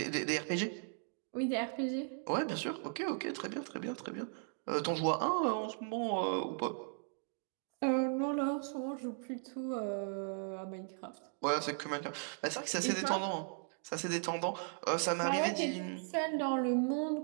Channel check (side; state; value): left; silent; 53 dB below the other